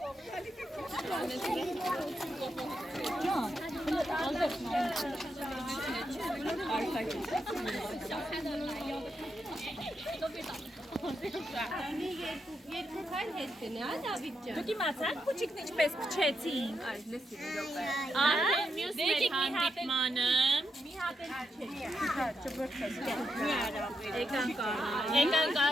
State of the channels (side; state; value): both; normal; correlation 0.83